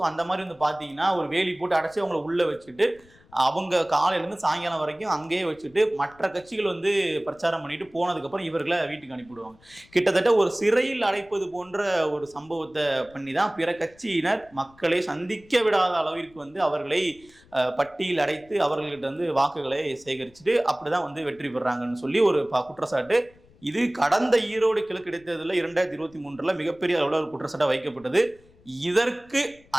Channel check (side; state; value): left; noise; rumble, 28 dB below the sound